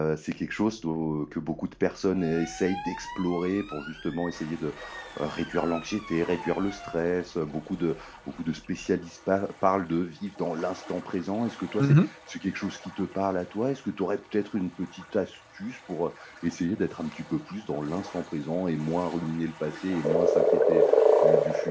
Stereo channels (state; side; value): identical; both; correlation 1.00